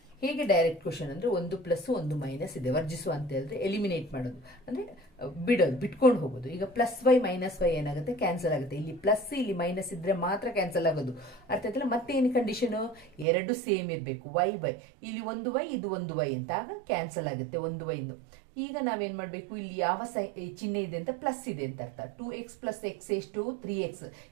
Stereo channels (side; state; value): left; drops out; at 13.2 s